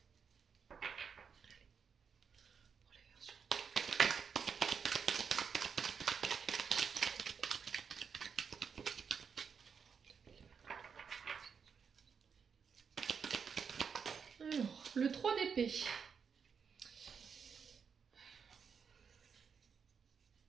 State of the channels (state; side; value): quieter; left; 6.4 dB